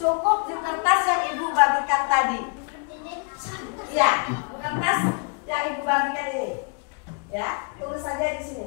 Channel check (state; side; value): quieter; right; 37.5 dB